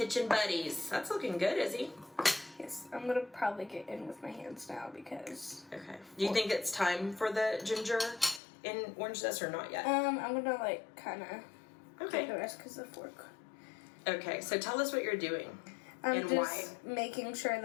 buddies. That's looking good, Izzy. Yes, I'm gonna probably get in with my hands now because. Okay. Do you think it's time for the ginger in orange zest or not yet? I'm gonna like kind of. Okay. The rest because of the fork. Okay, so tell us what you're doing. I'm and just why. making sure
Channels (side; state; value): right; drops out; at 8.4 s